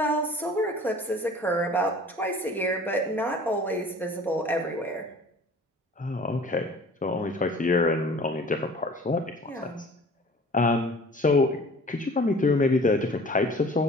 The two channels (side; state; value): both; normal; correlation 0.46